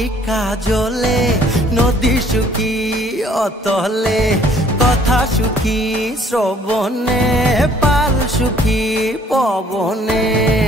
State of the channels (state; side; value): normal; both; correlation 0.59